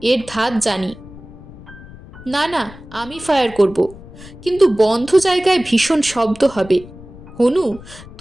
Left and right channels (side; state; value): left; noise; rumble, 18 dB below the sound